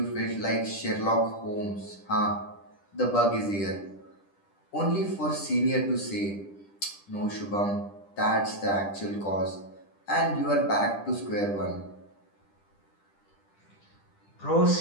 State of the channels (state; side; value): late; right; 10 ms